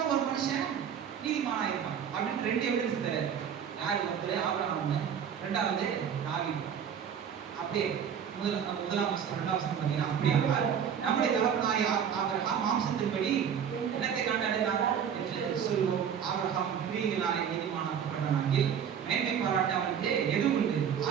ஒரு மனுஷன் நீதிமானாகிட்டான் அப்படின்னு 2 எவிடன்ஸ் தராரு. யாரு? ஒருத்தர் ஆபிரகாம், 2வது தாவீது. அப்படியே முதலாம் வசனம் 2ஆம் வசனம் பார்த்தீங்கன்னா அப்படியே நம்முடைய தகப்பனாகிய ஆபிரகாம் மாம்சத்தின்படி என்னத்தை கண்டடைந்தார் என்று சொல்வோம். ஆபிரகாம் கிரியைகளாலே நீதிமானாக்கப்பட்டானாகில் மேன்மை பாராட்ட அவனுக்கு எது உண்டு?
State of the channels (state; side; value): quieter; left; 8.0 dB